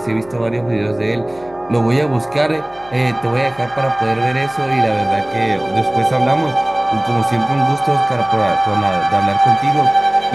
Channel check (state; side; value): noise; left; hum, 25 dB below the sound